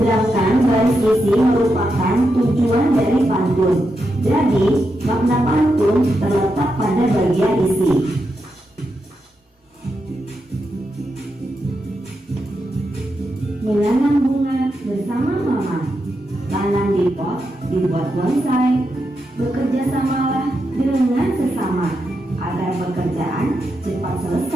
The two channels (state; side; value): normal; both; correlation 0.85